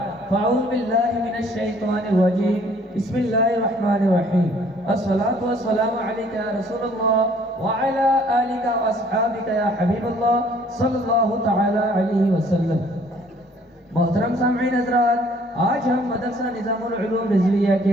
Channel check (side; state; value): both; normal; correlation 0.58